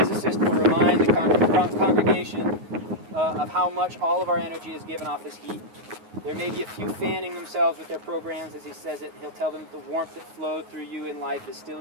will remind the congregation of how much all of our energy is given off as heat. There may be a few fanning themselves with their programs as he says it. He'll tell them that the warmth that flowed through you in life is still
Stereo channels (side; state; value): left; late; 9.5 ms